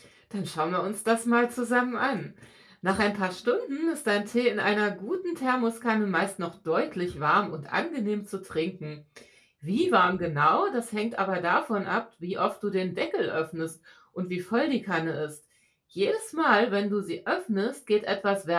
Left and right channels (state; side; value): identical; both; correlation 1.00